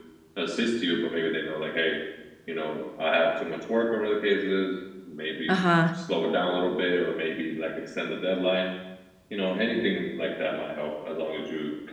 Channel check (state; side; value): identical; both; correlation 1.00